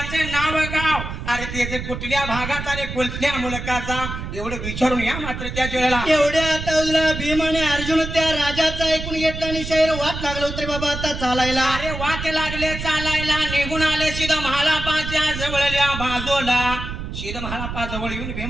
नाव गाव अरे त्याचे कुठल्या भागाचा आणि कुठल्या मुलकाचा एवढं विचारून या मात्र त्याच्या वेळेला एवढ्या आता उजला भीम आणि अर्जुन त्या राजाचा ऐकून घेतला आणि शहर वाट लागलं होतं रे बाबा आता चालायला अरे वाट लागले चालायला निघून आले सीधा महालापाच्या जवळल्या बाजूला सीधा महालापा जवळ येऊन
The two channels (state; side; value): noise; right; rumble, 7 dB below the sound